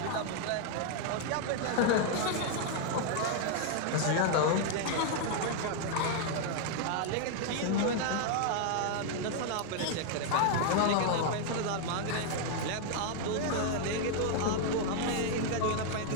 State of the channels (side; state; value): both; different; correlation 0.00